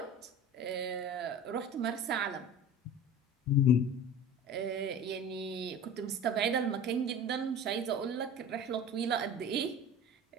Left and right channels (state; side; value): normal; both; correlation 0.36